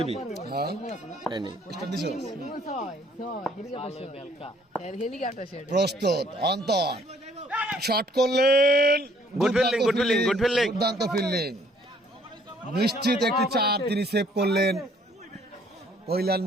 হ্যাঁ এই নেই স্টার্ট দিছো হেলিকপ্টার বেলকা হেলিকপ্টার সেট প্রস্তুত অন্তর শট করলেন, Good fielding, good fielding, good fielding. দুর্দান্ত ফিল্ডিং, নিশ্চিত একটি 4 তিনি সেভ করলেন। কৈলান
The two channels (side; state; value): both; normal; correlation 0.62